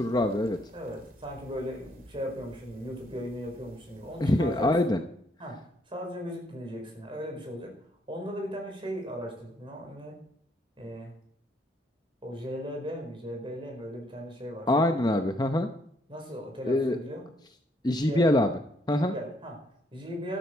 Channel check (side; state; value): both; normal; correlation 0.70